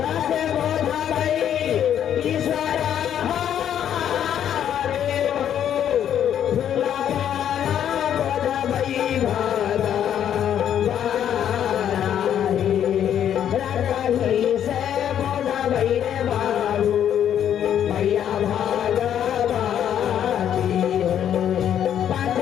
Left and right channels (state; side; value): quieter; right; 9.8 dB